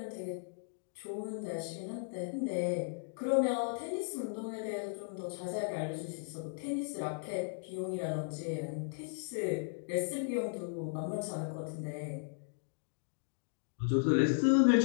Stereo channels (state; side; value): silent; right; digital silence